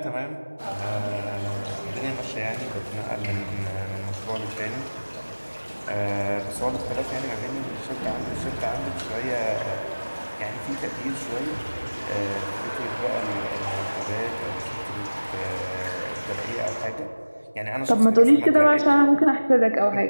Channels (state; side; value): inverted; both; correlation -1.00